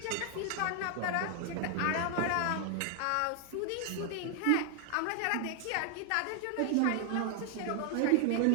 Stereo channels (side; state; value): both; different; correlation 0.00